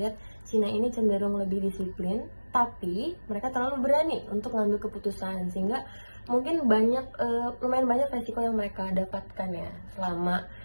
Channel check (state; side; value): inverted; both; correlation -1.00